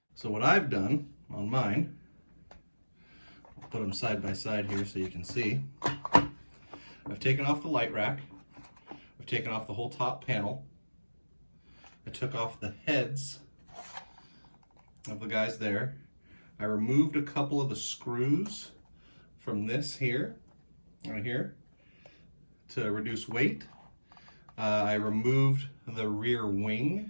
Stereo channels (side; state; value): both; inverted; correlation -1.00